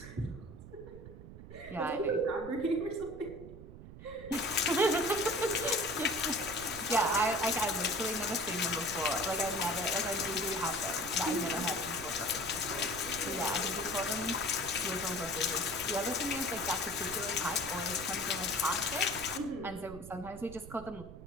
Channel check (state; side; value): noise; right; rumble, 14 dB below the sound